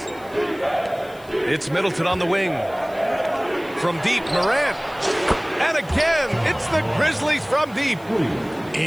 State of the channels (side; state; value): left; noise; hiss, 25 dB below the sound